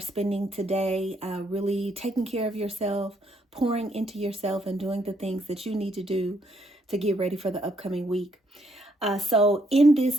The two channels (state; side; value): normal; both; correlation 0.72